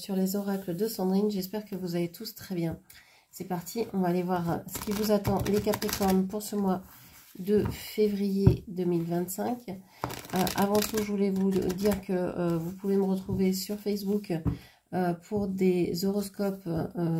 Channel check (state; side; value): identical; both; correlation 1.00